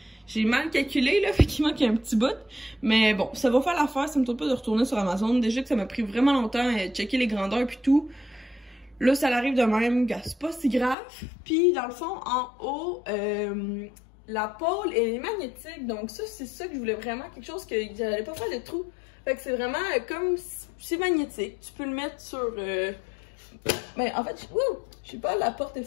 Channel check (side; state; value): right; drops out; at 11.0 s